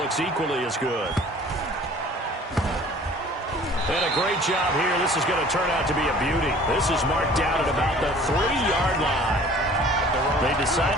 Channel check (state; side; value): normal; both; correlation 0.49